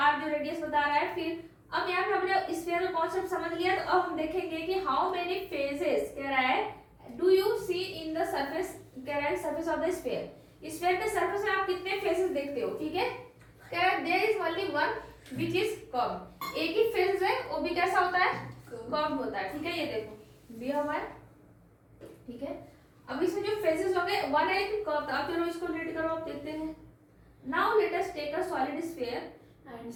जो रेडियस बता रहा है। फिर अब यहाँ पे हमने स्फीयर का कॉन्सेप्ट समझ लिया, तो अब हम देखेंगे कि हाउ मेनी फेसेस कह रहा है do you see in the surface, कह रहा है surface of the sphere. Sphere के सरफेस में आप कितने फेसेस देखते हो, ठीक है। कह रहा है there is only one which is curve, एक ही फेस है वो भी कैसा होता है, कर्व होता है, ठीक है। ये देखो दिया हुआ है, ठीक है। अब इसमें जो फेसेस होंगे वन है कि कर्व, अब चलो इसको रीड करो, आप देखते हैं। Now let us take a solid sphere and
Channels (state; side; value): identical; both; correlation 1.00